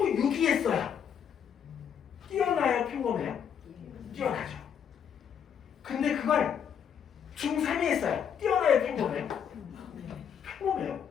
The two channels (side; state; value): right; quieter; 8.0 dB